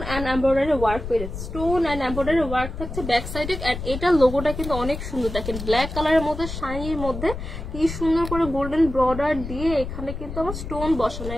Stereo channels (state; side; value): noise; left; rumble, 8 dB below the sound